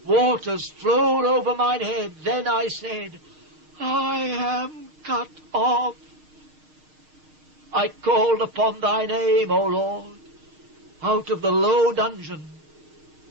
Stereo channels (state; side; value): late; left; 6.5 ms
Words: Waters flowed over mine head. Then I said, I am cut off. I called upon thy name, O Lord, out of the low dungeon.